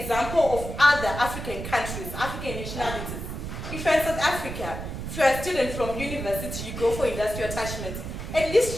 example of other African countries, African nationalities. If you're in South Africa, if you're a student from university, you go for industrial attachment, at least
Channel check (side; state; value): right; noise; rumble, 7 dB below the sound